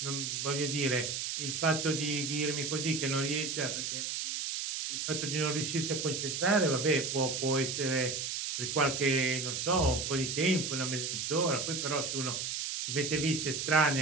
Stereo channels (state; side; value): noise; right; hiss, 3 dB below the sound